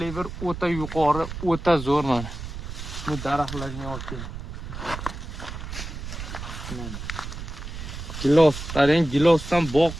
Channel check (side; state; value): right; noise; rumble, 8 dB below the sound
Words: o'ta yuqori, o'ta zo'r mana. Bu daraxtlarga olib keling. Gilos, qarang, gilosdan bog'